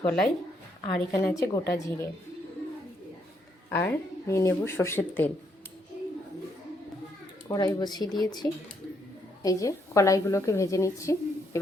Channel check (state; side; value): normal; both; correlation 0.74